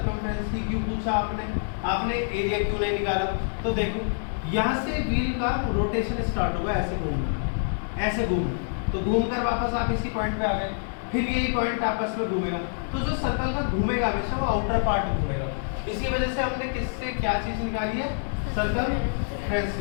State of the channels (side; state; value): right; silent; digital silence